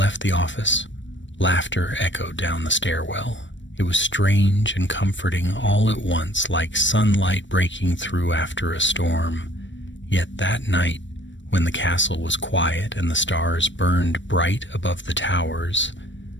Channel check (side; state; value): right; late; 0.54 ms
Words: the office, laughter echoed down the stairwell. It was strange and comforting all at once, like sunlight breaking through after a storm. Yet that night, when the castle was quiet and the stars burned bright above the towers,